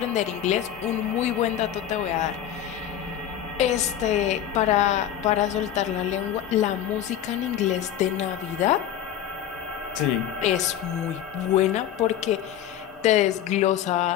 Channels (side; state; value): right; quieter; 10.7 dB